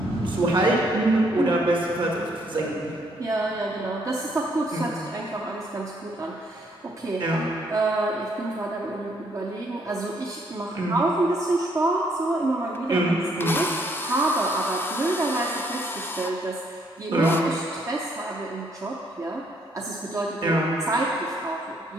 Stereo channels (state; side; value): normal; both; correlation 0.69